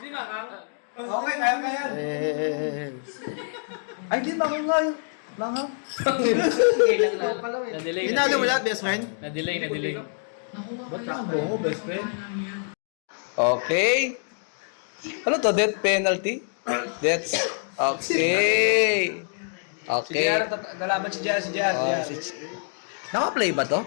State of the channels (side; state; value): right; silent; digital silence